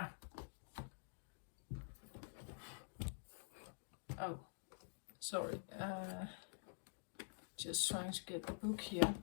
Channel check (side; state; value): right; silent; digital silence